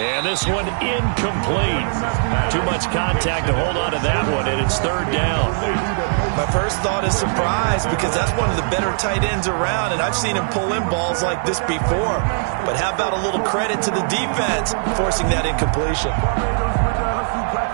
this one incomplete. Too much contact to hold on to that one, and it's 3rd down. My first thought is surprise, because that's one of the better tight ends around, and I've seen him pull in balls like this before. But how about a little credit to the defense forcing that incompletion?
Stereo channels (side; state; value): left; silent; 59 dB below the other